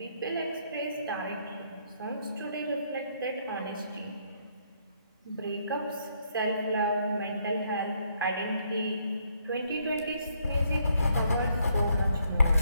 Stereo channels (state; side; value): inverted; both; correlation -0.71